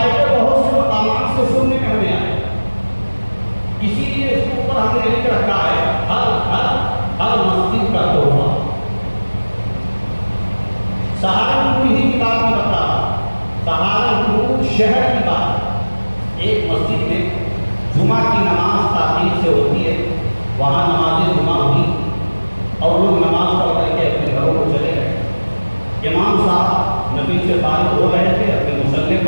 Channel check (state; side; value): inverted; both; correlation -1.00